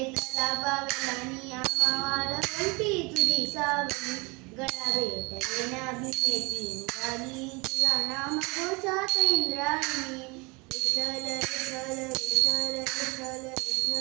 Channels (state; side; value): quieter; left; 27.3 dB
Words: पावलांनी आम्हाला कंठी तुझी सावली गळा भेट देण्या भीमेची निघाली तुझ्या नाम घोषात इंद्रायणी विठ्ठल विठ्ठल विठ्ठल विठ्ठल